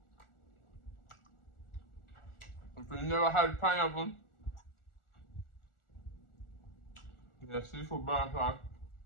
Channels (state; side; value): late; right; 1.4 ms